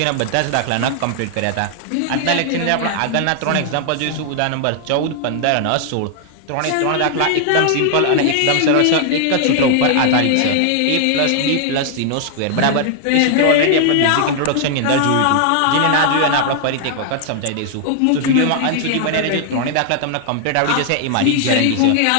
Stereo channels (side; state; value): both; different; correlation 0.00